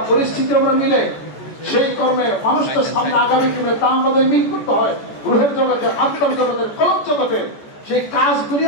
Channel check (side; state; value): right; late; 14 ms